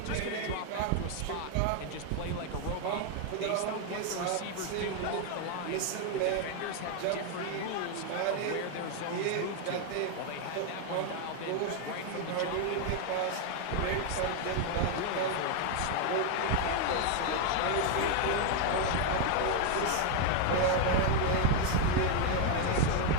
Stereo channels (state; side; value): different; both; correlation 0.01